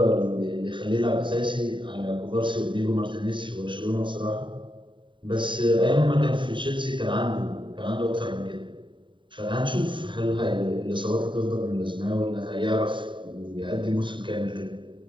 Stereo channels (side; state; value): left; late; 0.23 ms